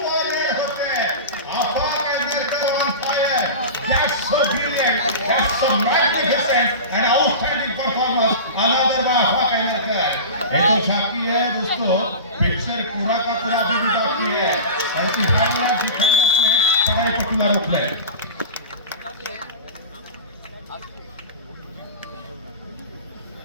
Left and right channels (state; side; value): inverted; both; correlation -0.30